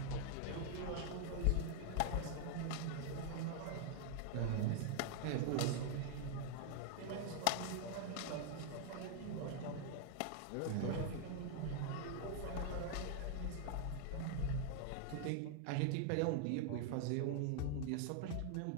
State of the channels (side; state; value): both; different; correlation 0.00